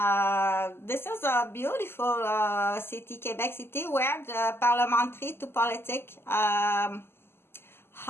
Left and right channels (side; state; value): right; late; 0.12 ms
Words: this is a beautiful city, Quebec City, where the parliamentary to politic